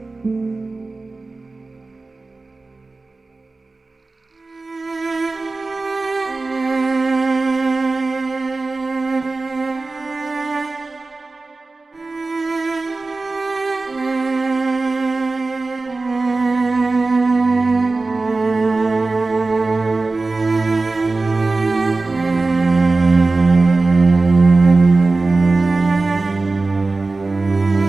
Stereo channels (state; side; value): quieter; left; 3.5 dB